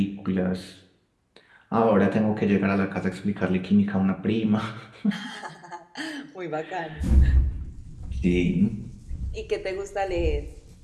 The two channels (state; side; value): identical; both; correlation 1.00